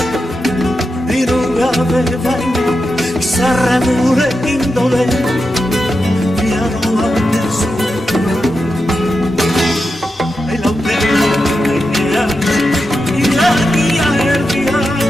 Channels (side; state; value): both; normal; correlation 0.89